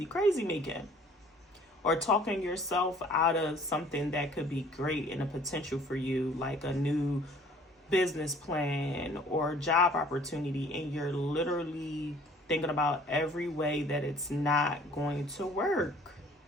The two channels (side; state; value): both; normal; correlation 0.54